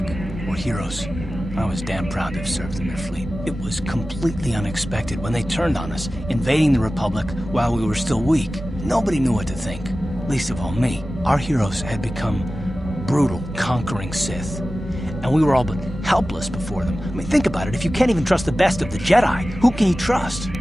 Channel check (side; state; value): both; normal; correlation 0.95